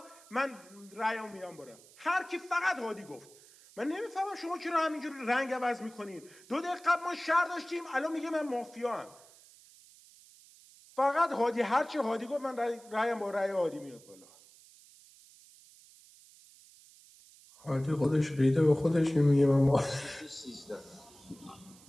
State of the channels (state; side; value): noise; right; hiss, 24 dB below the sound